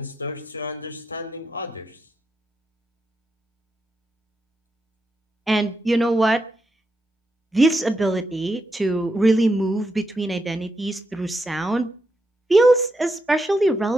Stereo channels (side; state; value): both; normal; correlation 0.83